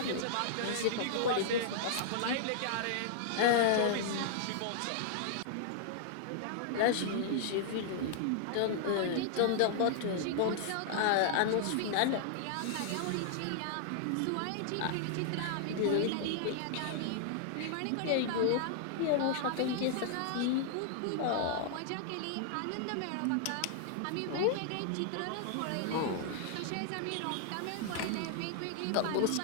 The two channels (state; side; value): different; both; correlation -0.01